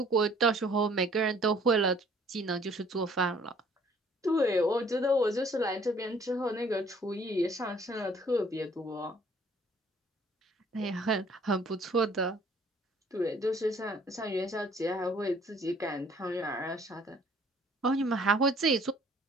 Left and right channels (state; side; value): normal; both; correlation 0.58